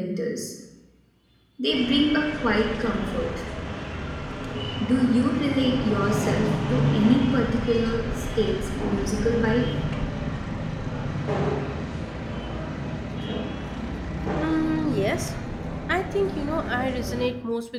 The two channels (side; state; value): both; identical; correlation 1.00